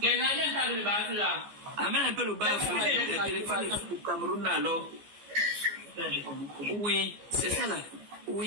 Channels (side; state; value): left; late; 15 ms